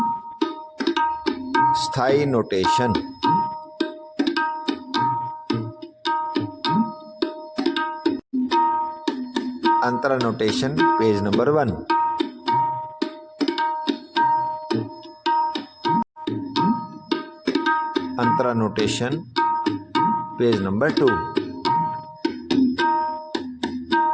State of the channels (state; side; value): identical; both; correlation 1.00